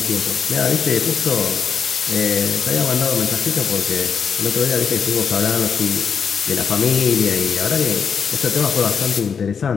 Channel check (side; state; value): right; quieter; 6.5 dB